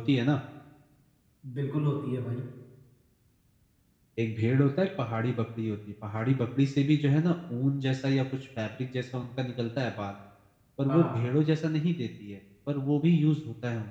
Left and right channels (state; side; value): identical; both; correlation 1.00